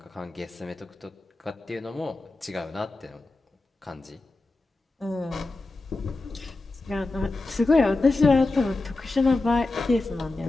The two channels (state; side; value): quieter; right; 3.2 dB